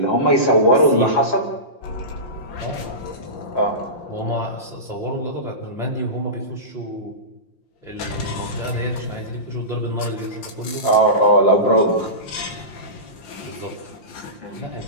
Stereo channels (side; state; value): right; late; 5.7 ms